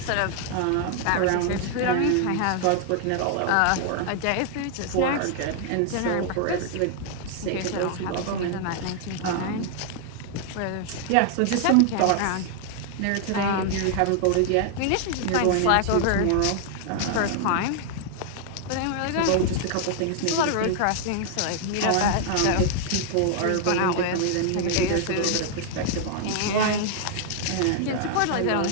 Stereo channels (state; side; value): different; both; correlation 0.00